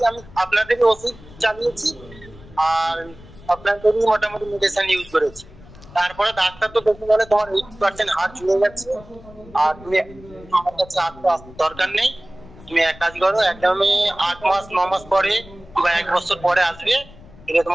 আমি আপনাদেরই ওষুধ চালিয়েছি আর আপনাদেরই মোটামুটি মেডিসিন ইউজ করেছি। তারপরে ডাক্তার তো দেখে বলে তোমার 80% হাড় ঝুলে যাচ্ছে আর তুমি আমার কাছে আসতে দরকার নেই, তুমি এক কাজ করো একদমই 8 মাস 9 মাস পরে বা 1 বছর পরে আসবে, এটা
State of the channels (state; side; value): noise; left; rumble, 21 dB below the sound